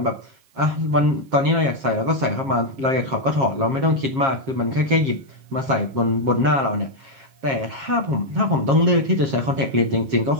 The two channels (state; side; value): late; left; 7.4 ms